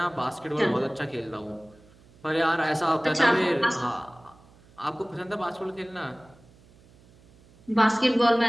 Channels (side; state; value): right; noise; hum, 27 dB below the sound